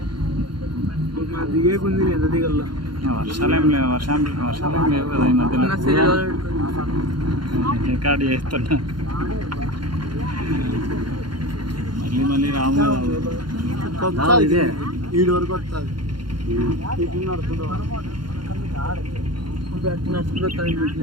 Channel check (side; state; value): left; late; 0.72 ms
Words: దిగే కొంది ఎంత దిగల్లో వర్షాలు ఏం లేవు, వర్షాలు ఏం లేవు కదా ఈ మధ్యలో. రికార్డు చేస్తున్నా మళ్ళీ రాము కదా. ఈడు వరకు వస్తుంది